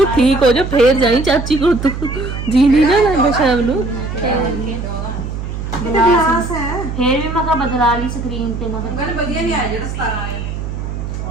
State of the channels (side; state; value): right; noise; hum, 6 dB below the sound